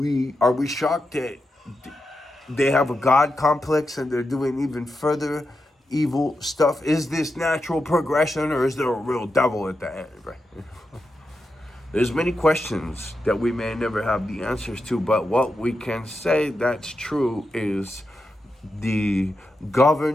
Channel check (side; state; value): both; normal; correlation 0.88